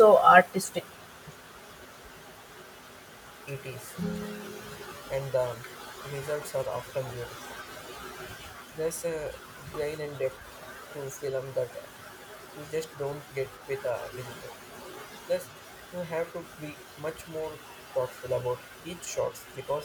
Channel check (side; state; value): both; identical; correlation 1.00